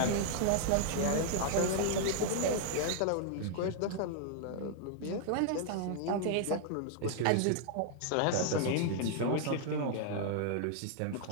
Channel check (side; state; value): both; different; correlation -0.01